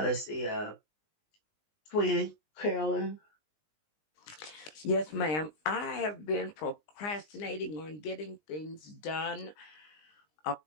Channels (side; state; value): right; late; 19 ms